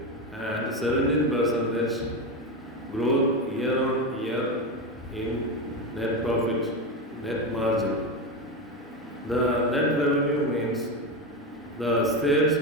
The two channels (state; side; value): normal; both; correlation 0.16